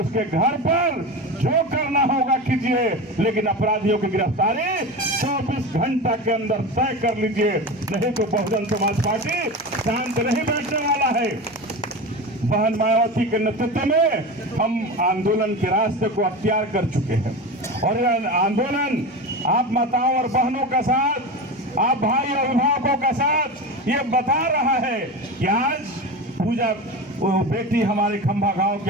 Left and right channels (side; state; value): both; normal; correlation 0.25